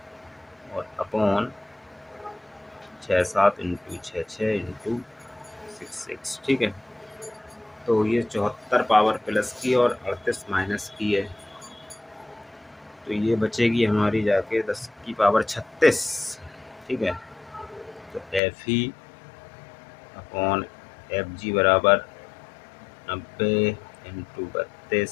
और अपॉन 67 × 6 इंटू 66। ठीक है, तो ये 74 पावर प्लस की और 38 माइनस की है, तो ये बचेगी हमारी जाके 10 की पावर 36। ठीक है, तो FE/FG बराबर 90 ×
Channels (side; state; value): right; drops out; at 18.4 s